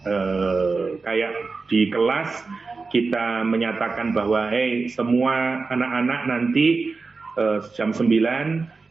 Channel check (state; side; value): quieter; left; 4.2 dB